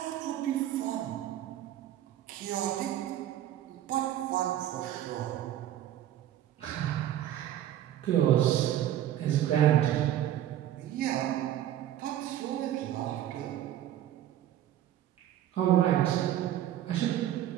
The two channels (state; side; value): quieter; left; 12.1 dB